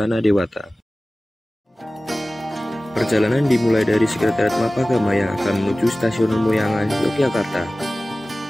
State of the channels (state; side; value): normal; both; correlation 0.97